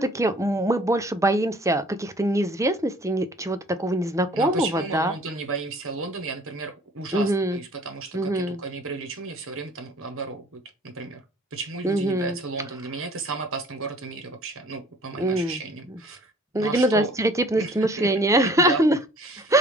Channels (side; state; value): both; normal; correlation 0.52